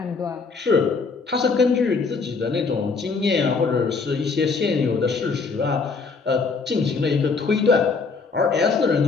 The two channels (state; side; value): quieter; right; 4.6 dB